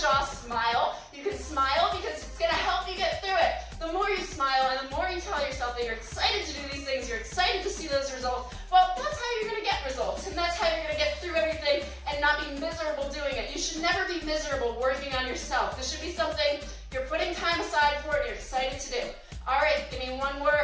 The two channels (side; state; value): both; identical; correlation 1.00